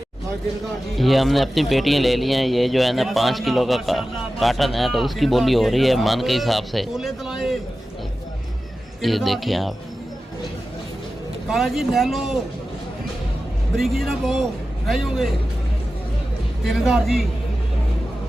ये हमने अपनी पेटियाँ ले ली हैं। ये जो है ना 5 किलो का कार्टन है, तो उसकी बोली हो रही है मन के हिसाब से। ये देखें आप। काला जी ले लो, बरीकी ना पो नहीं होंगे। 3,000 जी,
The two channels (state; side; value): normal; both; correlation 0.94